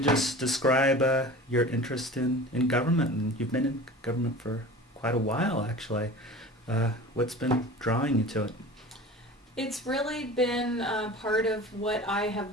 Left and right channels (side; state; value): both; normal; correlation 0.37